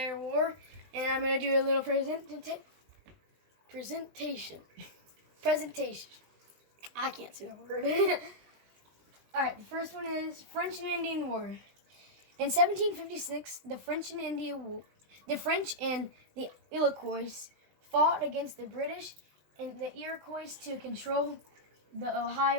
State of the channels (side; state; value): left; late; 20 ms